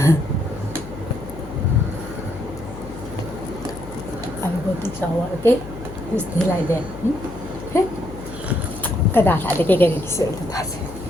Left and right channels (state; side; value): noise; left; hum, 13 dB below the sound